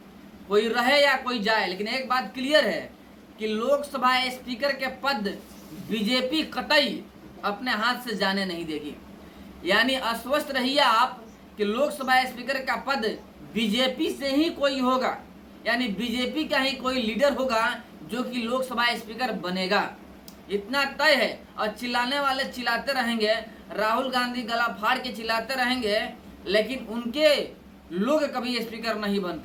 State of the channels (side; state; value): both; identical; correlation 1.00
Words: कोई रहे या कोई जाए। लेकिन एक बात क्लियर है कि लोकसभा स्पीकर के पद बीजेपी कतई अपने हाथ से जाने नहीं देगी। यानी आश्वस्त रहिए आप कि लोकसभा स्पीकर का पद बीजेपी से ही कोई होगा, यानी बीजेपी का ही कोई लीडर होगा जो कि लोकसभा स्पीकर बनेगा, इतना तय है। और चिल्लाने वाले चिल्लाते रहेंगे, राहुल गांधी गला फाड़ के चिल्लाते रहेंगे, लेकिन उनके लोग कभी स्पीकर नहीं बन